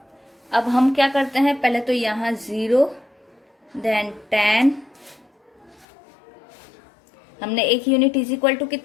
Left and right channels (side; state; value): right; drops out; at 5.9 s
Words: अब हम क्या करते हैं, पहले तो यहाँ 0 देन 10। हमने एक यूनिट इज इक्वल टू